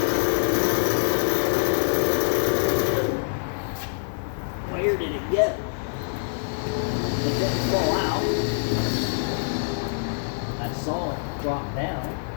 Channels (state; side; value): silent; right; digital silence